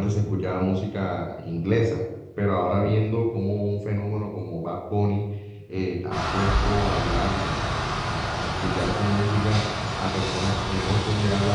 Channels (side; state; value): both; identical; correlation 1.00